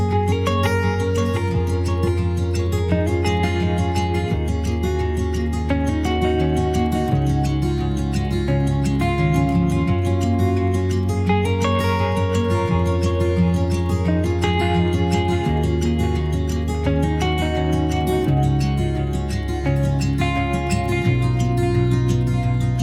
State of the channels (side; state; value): both; identical; correlation 1.00